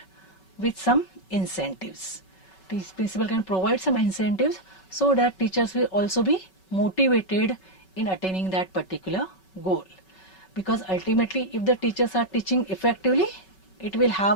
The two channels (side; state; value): right; late; 5.3 ms